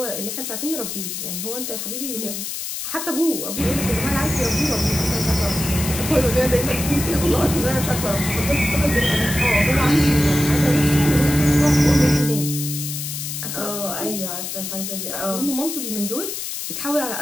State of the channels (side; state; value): left; noise; hiss, 5 dB below the sound